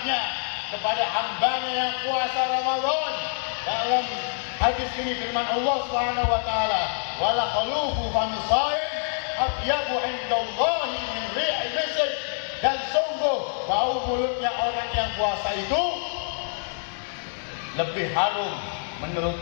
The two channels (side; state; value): right; silent; digital silence